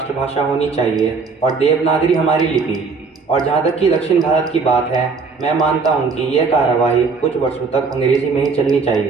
होनी चाहिए और देवनागरी हमारी लिपि। और जहाँ तक कि दक्षिण भारत की बात है, मैं मानता हूँ कि यह कार्यवाही कुछ वर्षों तक अंग्रेजी में ही चलनी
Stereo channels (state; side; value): quieter; left; 4.7 dB